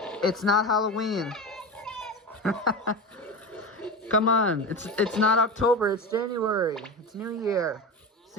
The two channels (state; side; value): normal; both; correlation 0.25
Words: it's not Halloween. Come on, it's not October. It's January. It's New Year.